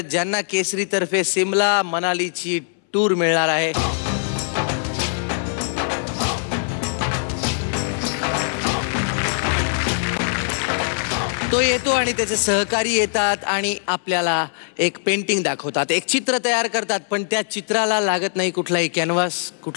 ज्यांना केसरीतर्फे सिमला मनालीची टूर मिळणार आहे। तो येतो आणि त्याचे सहकारी येतात आणि आपल्याला एक पेंटिंग दाखवतात, एक चित्र तयार करतात, पण त्या चित्राला लागत नाही कुठलाही कॅनव्हास,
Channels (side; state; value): right; silent; 63 dB below the other